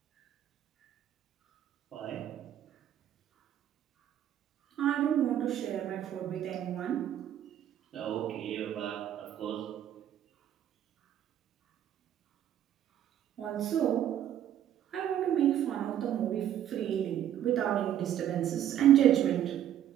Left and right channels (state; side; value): quieter; left; 10.8 dB